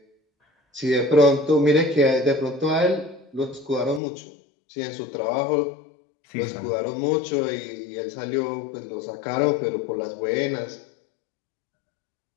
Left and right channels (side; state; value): right; drops out; at 4.0 s